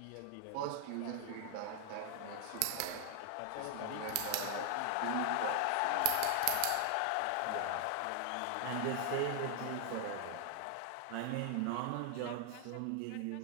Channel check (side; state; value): both; different; correlation 0.00